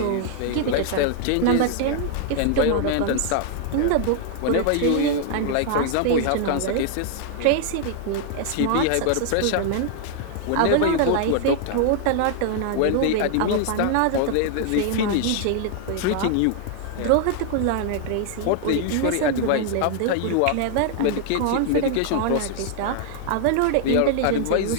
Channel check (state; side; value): different; both; correlation 0.00